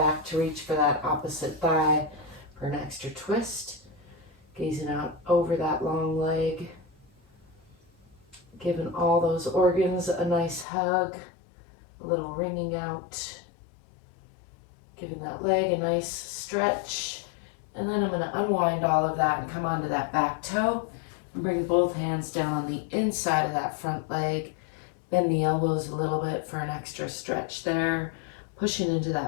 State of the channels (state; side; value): drops out; right; at 10.7 s